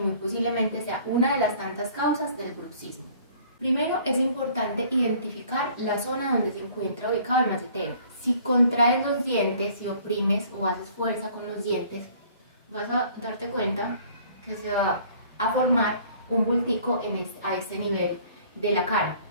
posiblemente sea una de las tantas causas del bruxismo. Primero, es importante identificar la zona donde se encuentra ubicado el macetero. Si contraes los dientes, si oprimes o haces fuerza con los dientes, vas a darte cuenta que se va a formar un bultico a este nivel de la cara,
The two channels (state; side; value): inverted; both; correlation -0.54